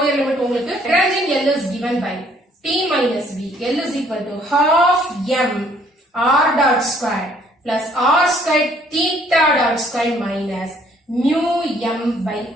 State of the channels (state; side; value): normal; both; correlation 0.62